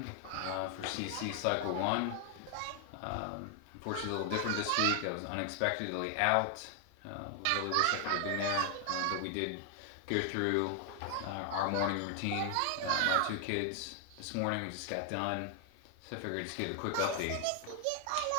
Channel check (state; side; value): different; both; correlation 0.00